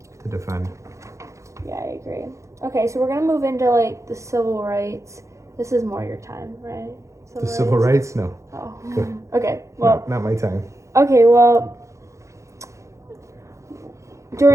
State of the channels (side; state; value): left; late; 0.15 ms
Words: to defend. Yeah, I agree. Okay, so we're gonna move into like the civil rights. This is more your time, right? Civil rights? No. Oh. Good. Okay. Well. Not my time. Okay. Well.